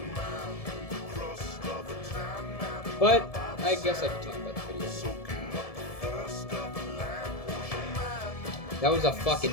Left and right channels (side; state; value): right; late; 1.7 ms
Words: it. But I guess I could talk about the video game. That was a